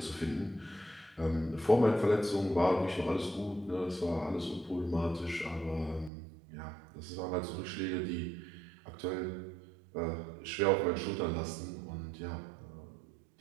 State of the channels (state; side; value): drops out; left; at 6.1 s